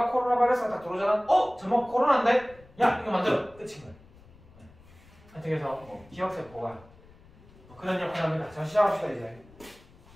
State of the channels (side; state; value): left; noise; rumble, 24 dB below the sound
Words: 코로나 바이러스가 딱 들어오잖아. 저거 코로나인데? 야 이거 만들어. 끝인 거야. 하여튼 그래서 기억세포가 그런 역할을 합니다. 자, 시작합시다. 이제